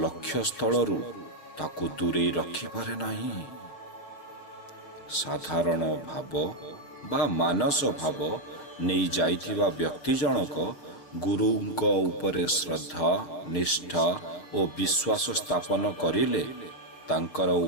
ଲକ୍ଷ୍ୟସ୍ଥଳରୁ ତାକୁ ଦୂରେଇ ରଖିପାରେ ନାହିଁ। ସାଧାରଣ ଭାବ ବା ମାନସ ଭାବ ନେଇ ଯାଇଥିବା ବ୍ୟକ୍ତି ଜଣକ ଗୁରୁଙ୍କ ଉପରେ ଶ୍ରଦ୍ଧା, ନିଷ୍ଠା ଓ ବିଶ୍ୱାସ ସ୍ଥାପନ କରିଲେ, ତାଙ୍କର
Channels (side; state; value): right; late; 6.3 ms